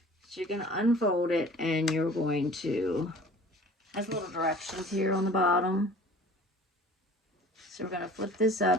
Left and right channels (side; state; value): both; normal; correlation 0.46